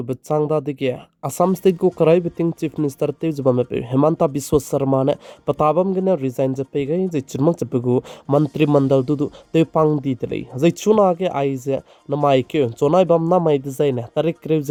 changda dige Assam State ko karai biting Chief Minister te jubame pe Hemanta Biswa Sharma ne patabam gane resign je pe gai je chirmak je pegu mantri mandal du te pang di tele je chuna ke ai je namai ke chonai bam na mai design ne tarik krev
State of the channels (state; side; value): identical; both; correlation 1.00